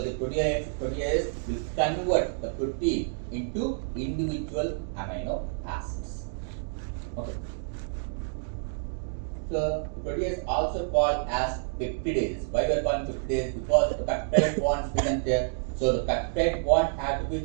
the proteases will convert the protein into individual amino acids. Okay. So protease also called as peptidases. Why we are calling peptidases? Because the peptide bonds present there. So the peptide bond had to be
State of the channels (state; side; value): silent; left; digital silence